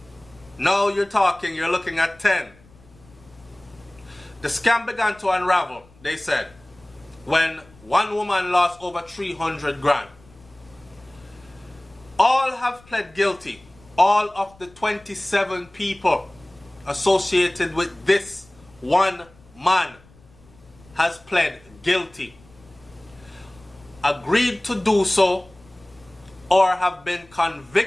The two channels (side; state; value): left; noise; rumble, 27 dB below the sound